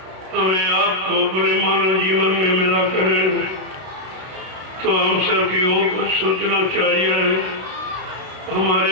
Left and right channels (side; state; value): left; late; 32 ms